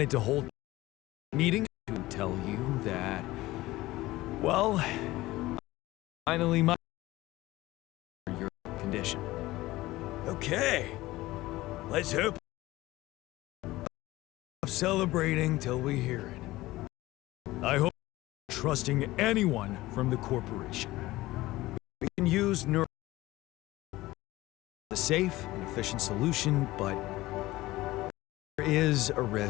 to hold a meeting to tell you that, well, finally my your condition. Okay. Let's hope. Celebrating till we hear it. I hope you're trusting anyone from the corporation. We can use neuro a safe and efficient solution, but there is a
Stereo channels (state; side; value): quieter; right; 18.0 dB